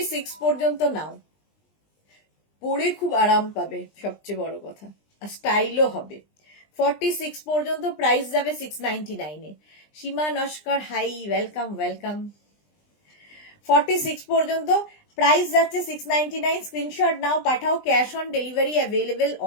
পর্যন্ত নাও, পরে খুব আরাম পাবে, সবচেয়ে বড় কথা, আর স্টাইলও হবে। 46 পর্যন্ত প্রাইস যাবে 699 এ। সীমা নস্কর, হাই, ওয়েলকাম ওয়েলকাম। 46 পর্যন্ত প্রাইস যাচ্ছে 699। স্ক্রিনশট নাও, পাঠাও, cash on delivery available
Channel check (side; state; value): right; late; 20 ms